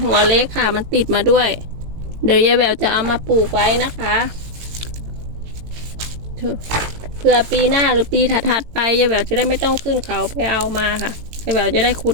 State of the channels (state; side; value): late; left; 18 ms